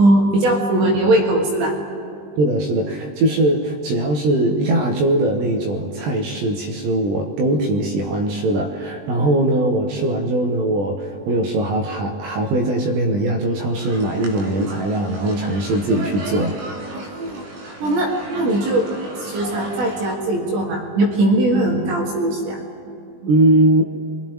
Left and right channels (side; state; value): left; late; 20 ms